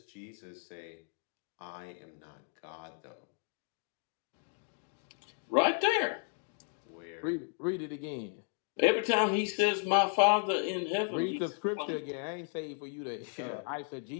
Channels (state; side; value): silent; right; 55 dB below the other